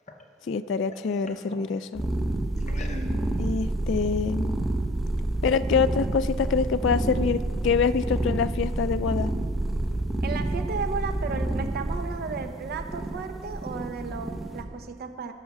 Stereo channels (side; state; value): both; normal; correlation 0.46